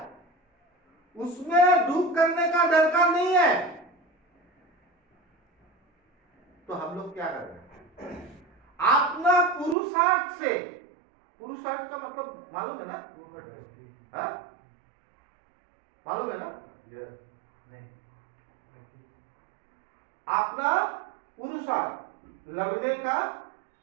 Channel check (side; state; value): left; drops out; at 9.8 s